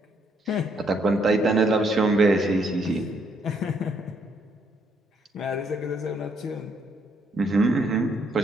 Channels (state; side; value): normal; both; correlation 0.71